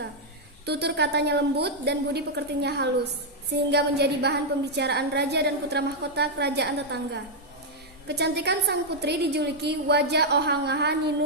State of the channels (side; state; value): both; normal; correlation -0.03